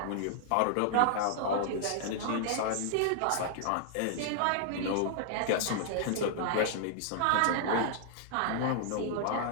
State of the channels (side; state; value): both; different; correlation -0.01